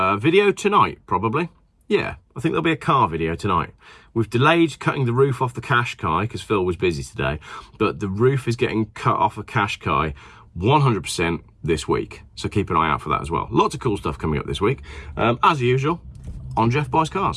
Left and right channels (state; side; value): identical; both; correlation 1.00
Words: Video tonight, probably. Yeah, I think there'll be a car video tonight. We've delayed cutting the roof off the Qashqai because Phil was busy today, but the roof is getting cut off a Qashqai 100% this week. So keep an eye out for that as well. Lots of cool stuff coming up this week. As usual, on Geoff Buys